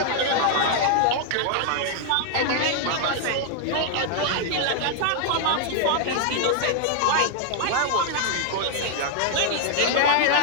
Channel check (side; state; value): both; different; correlation 0.00